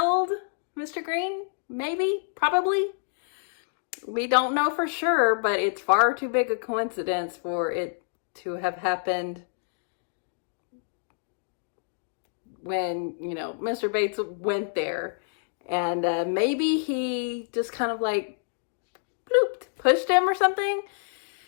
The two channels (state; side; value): silent; right; digital silence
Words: Mr. Green, maybe, probably. We don't know for sure, but it's far too big a coincidence for it to have happened when, Mr. Bates went there. And maybe he just kind of like blooped, pushed him or something.